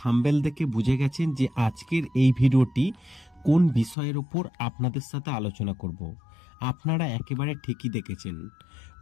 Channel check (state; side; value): drops out; right; at 4.0 s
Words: দেখে বুঝে গেছেন যে আজকের এই ভিডিওটি কোন বিষয়ের উপর আপনাদের সাথে আলোচনা করব। আপনারা একেবারে ঠিকই দেখেছেন,